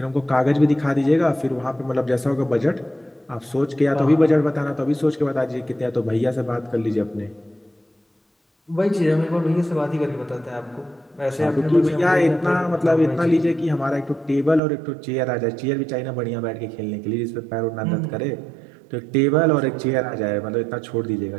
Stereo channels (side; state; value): left; drops out; at 14.6 s